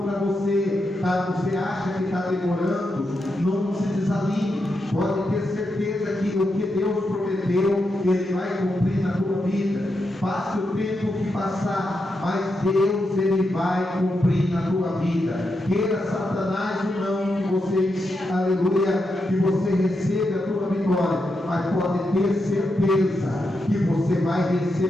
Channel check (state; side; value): normal; both; correlation 0.85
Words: para você, você acha que está demorando, não se desanime, pode ter certeza que o que Deus prometeu, Ele vai cumprir na tua vida. Passe o tempo que passar, mas Deus, Ele vai cumprir na tua vida. Queira Satanás ou não, que você, aleluia, que você receba a tua vitória, mas pode ter certeza que você vai